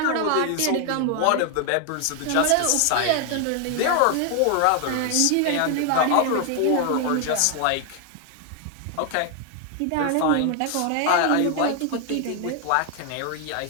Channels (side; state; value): both; different; correlation 0.00